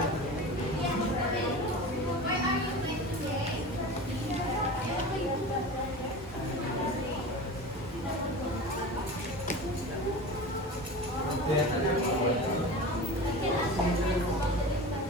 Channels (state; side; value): normal; both; correlation 0.32